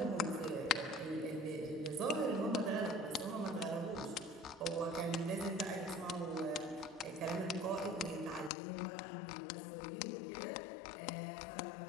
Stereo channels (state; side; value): drops out; right; at 8.5 s